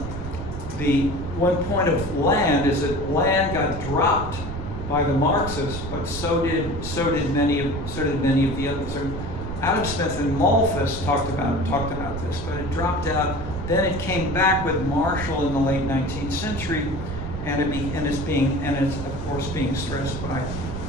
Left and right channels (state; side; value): noise; right; rumble, 7 dB below the sound